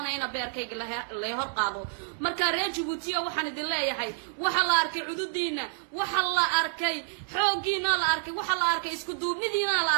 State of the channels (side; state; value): left; silent; 59 dB below the other